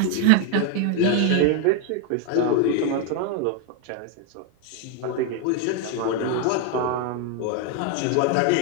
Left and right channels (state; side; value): different; both; correlation 0.00